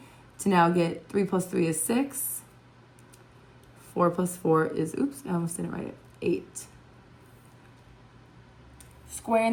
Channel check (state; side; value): identical; both; correlation 1.00